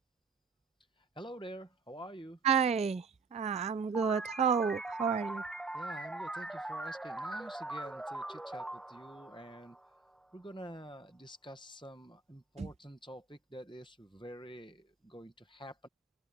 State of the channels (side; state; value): left; quieter; 5.2 dB